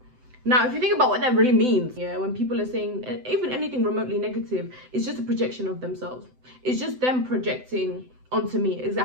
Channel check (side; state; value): left; late; 7.9 ms